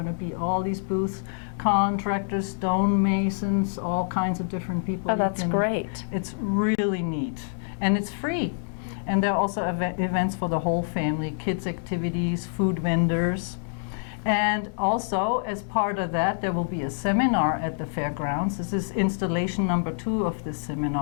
to be all these booths, contractors, stonemasons, all kinds of different people. Oh, that's great. It's really neat, and it's free. And there are also events for the whole family, kids activities, food vendors. And also, as part of that, there will be a seminar at the fairgrounds. This is installation number 2 of this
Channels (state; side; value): silent; right; digital silence